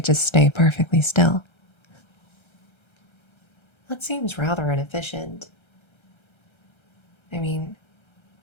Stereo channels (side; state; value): right; late; 1.3 ms